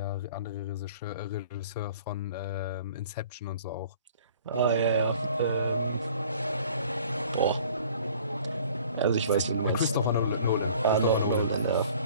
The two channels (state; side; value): inverted; both; correlation -0.51